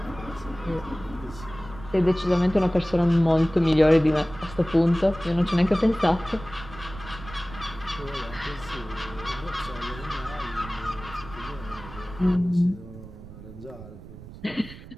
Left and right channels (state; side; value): noise; right; rumble, 15 dB below the sound